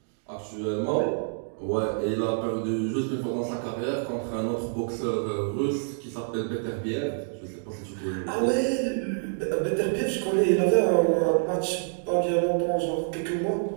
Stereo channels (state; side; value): silent; left; digital silence